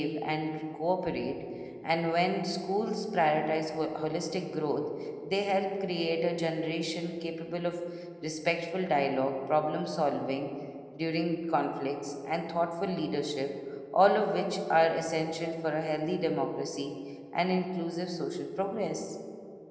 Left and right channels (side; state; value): both; identical; correlation 1.00